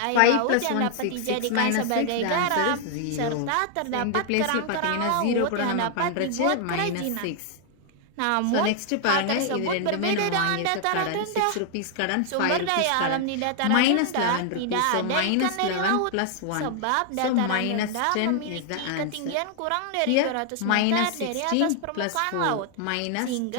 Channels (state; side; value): different; both; correlation 0.00